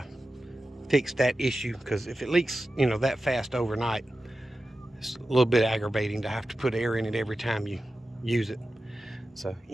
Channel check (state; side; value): normal; both; correlation 0.93